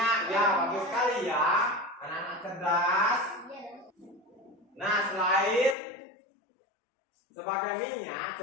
Ya, bagus sekali ya. Anak-anak cerdas. Nah, selain sebagai minyak,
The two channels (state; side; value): drops out; right; at 5.8 s